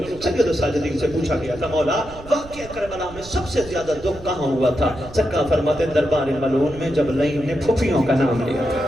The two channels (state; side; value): noise; right; rumble, 17 dB below the sound